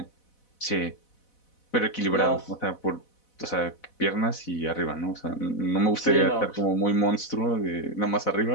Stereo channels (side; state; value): right; late; 4.0 ms